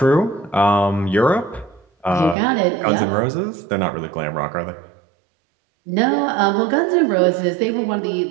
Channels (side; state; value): left; drops out; at 2.4 s